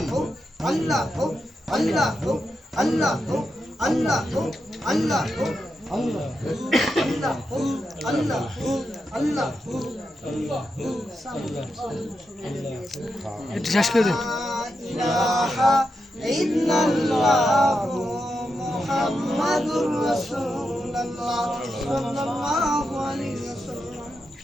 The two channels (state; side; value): normal; both; correlation 0.86